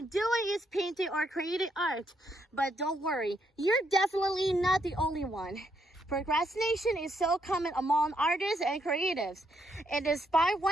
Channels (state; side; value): normal; both; correlation 0.76